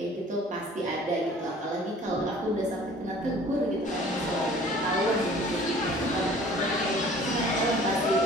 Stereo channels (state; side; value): normal; both; correlation 0.50